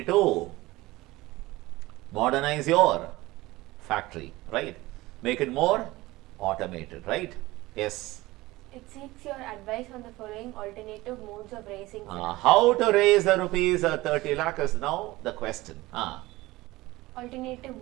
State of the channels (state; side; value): quieter; left; 19.4 dB